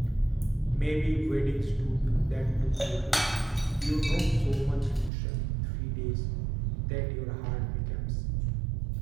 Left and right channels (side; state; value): left; drops out; at 5.1 s